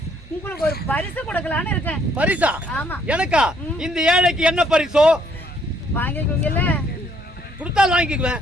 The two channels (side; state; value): both; normal; correlation 0.66